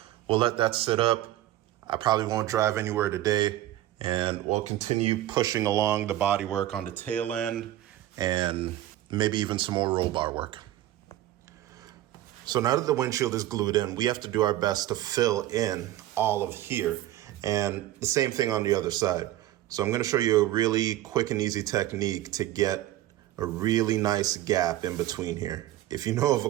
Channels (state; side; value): quieter; left; 14.4 dB